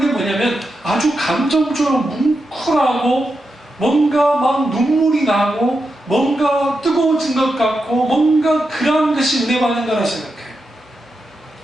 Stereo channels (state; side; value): normal; both; correlation 0.87